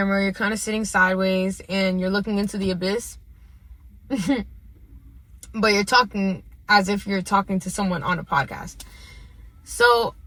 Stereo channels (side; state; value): both; identical; correlation 1.00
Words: you're kind of sitting sideways and you're looking into the abyss. But you're talking as if you're talking to someone on a podcast. So